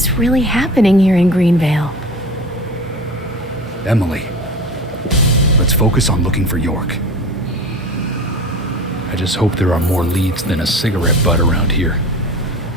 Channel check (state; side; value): normal; both; correlation 0.35